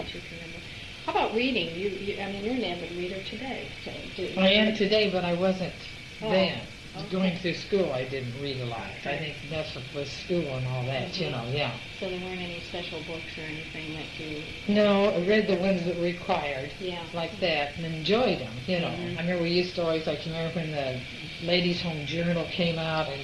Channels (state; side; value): identical; both; correlation 1.00